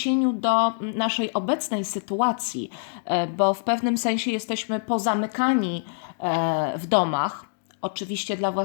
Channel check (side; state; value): right; silent; digital silence